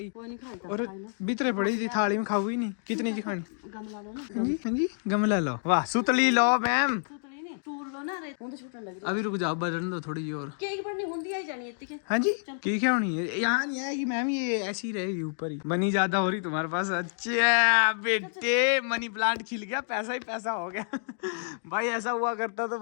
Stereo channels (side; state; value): right; silent; digital silence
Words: कोई नहीं खाएगा। और भीतरे पड़ी थी थाली में, खाऊ ही नहीं। कितनी जी खानी? गमला लो ना। हाँ जी हाँ जी गमला लो। वाह सुतली लो मैम। सुतली नहीं टूर लो ना रे, हुन तो छूटने लगी। अभी रुक जाओ, बजन दो थोड़ी और। केक बढ़नी हुंदी आई जानी इतनी के। हाँ जी की क्या होनी है, यहाँ नहीं आएगी मैम, ये ऐसी रहेगी ऊपर ही। मनी ज्यादा हो रही तुम्हारे पास। अच्छा बेटे मनी प्लांट खिल गया, पैसा ही पैसा हो गया। भाई ऐसा हुआ करता तो